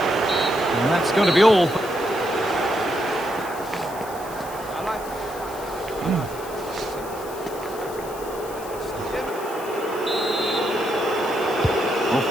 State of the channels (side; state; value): left; noise; hiss, 16 dB below the sound